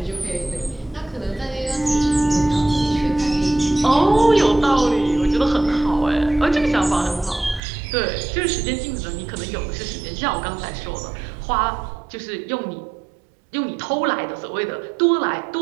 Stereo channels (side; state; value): left; drops out; at 7.6 s